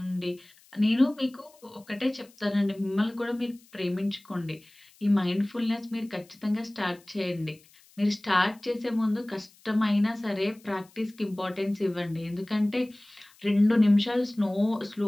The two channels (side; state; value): left; noise; hiss, 28 dB below the sound